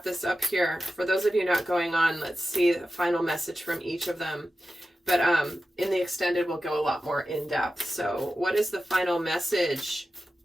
this up here. For those of you not going on, let's see the final message from each of them. But in the extended, we'll go a lot more in depth. So what is the final message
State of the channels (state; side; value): normal; both; correlation 0.93